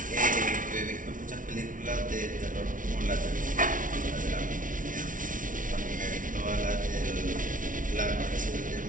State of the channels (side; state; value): left; late; 0.38 ms